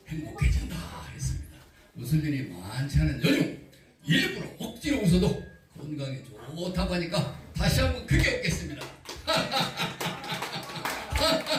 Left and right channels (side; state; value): both; identical; correlation 1.00